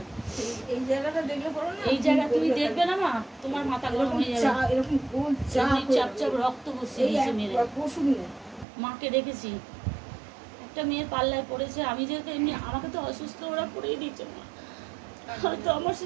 এই জায়গাটা দেখলে পড়ো না, এই জায়গা তুমি দেখবে না মা, তোমার মাথা গরম হয়ে যাবে। এরকম গোল চাপ চাপ রক্ত বসিয়ে দিয়েছে মেরে। মাকে দেখেছি, একটা মেয়ের পাল্লায় পড়েছে। আমি যেহেতু এমনি, আমাকে তো অসুস্থ ওরা করেই দিয়েছে মা। হয়তো আমার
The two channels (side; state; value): left; drops out; at 8.7 s